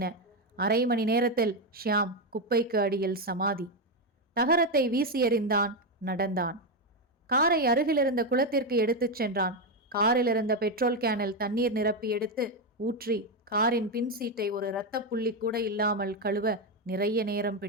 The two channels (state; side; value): normal; both; correlation 0.07